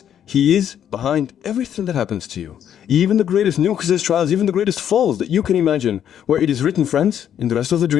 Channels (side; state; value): right; quieter; 9.6 dB